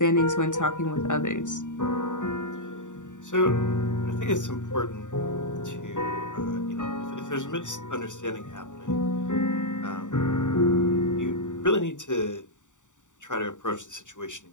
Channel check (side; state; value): right; late; 0.86 ms